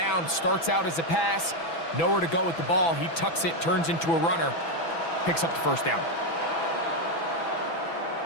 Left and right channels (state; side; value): late; right; 6.0 ms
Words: Starts out as a pass. Nowhere to go with the ball. He tucks it, turns into a runner. Picks up the first down.